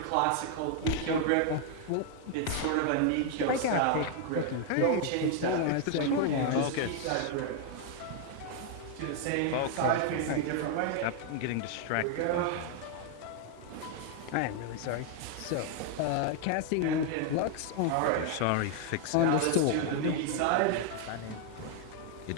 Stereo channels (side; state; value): both; different; correlation 0.00